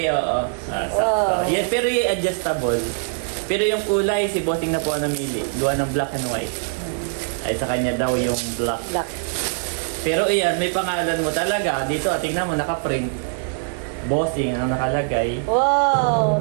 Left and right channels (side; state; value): left; silent; 64 dB below the other